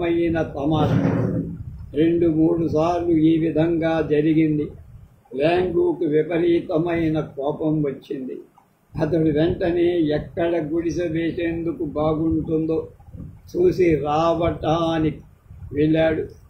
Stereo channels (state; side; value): identical; both; correlation 1.00